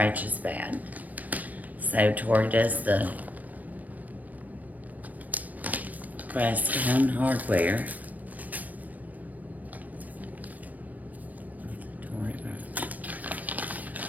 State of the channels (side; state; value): left; late; 0.078 ms